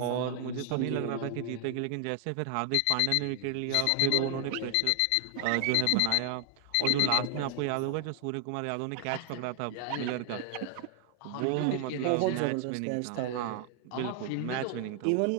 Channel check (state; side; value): different; both; correlation 0.00